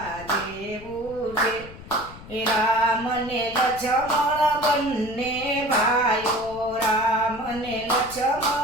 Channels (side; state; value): left; noise; rumble, 17 dB below the sound